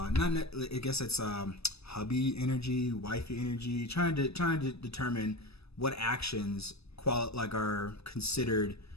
guess it's hubby energy, wifey energy, trying to determine what actions are considered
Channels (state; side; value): late; right; 0.78 ms